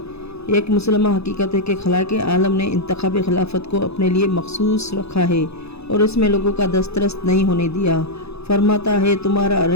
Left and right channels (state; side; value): late; right; 0.79 ms